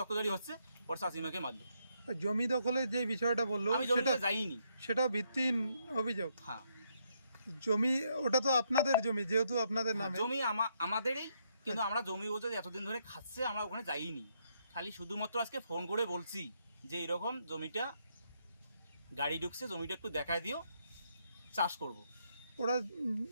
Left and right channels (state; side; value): inverted; both; correlation -0.75